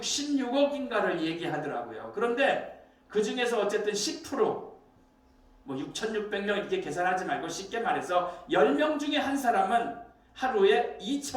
얘기하더라고요. 그런데 그 중에서 어쨌든 10%, 6,600명 이렇게 계산하지 말고 쉽게 말해서 10명 중에 한 사람은 하루에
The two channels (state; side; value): identical; both; correlation 1.00